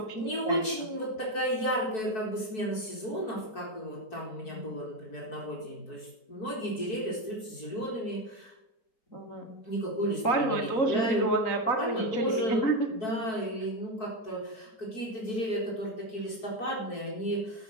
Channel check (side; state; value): right; late; 4.6 ms